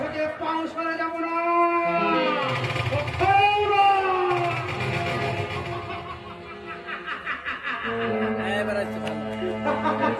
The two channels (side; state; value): both; identical; correlation 1.00